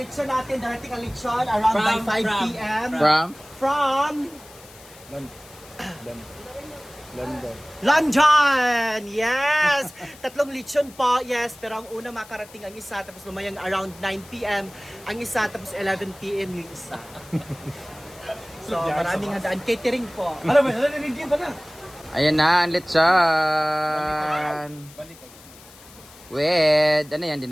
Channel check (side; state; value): left; noise; hiss, 21 dB below the sound